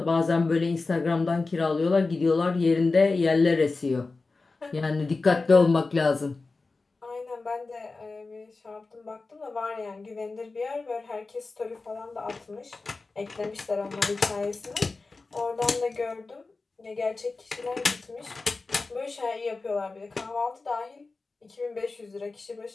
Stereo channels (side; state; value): right; quieter; 3.8 dB